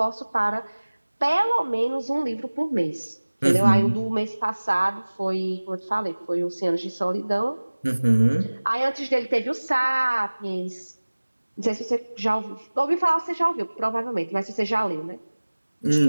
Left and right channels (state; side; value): inverted; both; correlation -1.00